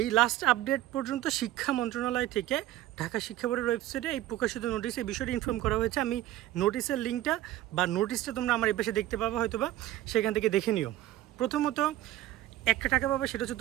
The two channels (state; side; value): quieter; left; 14.2 dB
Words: এই লাস্ট আপডেট পর্যন্ত শিক্ষা মন্ত্রণালয় থেকে ঢাকা শিক্ষা বোর্ডের ওয়েবসাইটে এই প্রকাশিত নোটিশে এই বিষয়টি ইনফর্ম করা হয়েছে। আমি নোটিশের লিঙ্কটা বা নোটিশটা তোমরা আমার এই পাশে দেখতে পাবো, হয়তোবা সেখান থেকে দেখে নিও। প্রথমত একটা টাকা পাবে, সেটা হচ্ছে